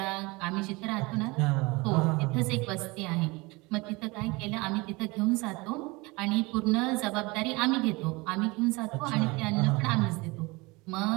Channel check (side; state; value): left; quieter; 24.6 dB